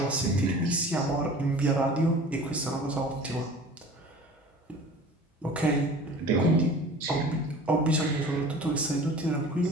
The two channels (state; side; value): normal; both; correlation 0.42